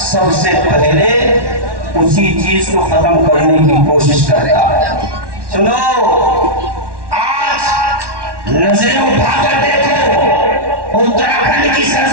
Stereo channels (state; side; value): late; left; 1.1 ms